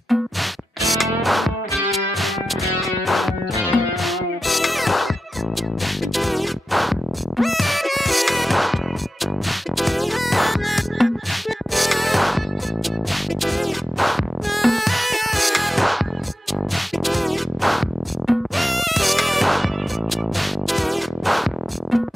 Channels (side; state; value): both; normal; correlation 0.92